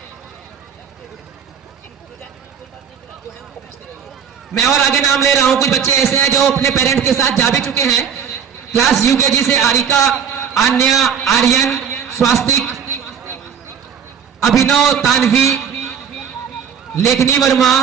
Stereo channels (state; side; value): quieter; left; 7.5 dB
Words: मैं और आगे नाम ले रहा हूं। कुछ बच्चे ऐसे हैं जो अपने पेरेंट्स के साथ जा भी चुके हैं। क्लास UKG से आरिका, आन्या, आर्यन, स्वास्तिक, अभिनव, तानवी, लेखनी वर्मा,